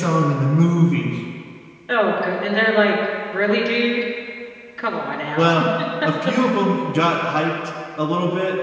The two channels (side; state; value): both; identical; correlation 1.00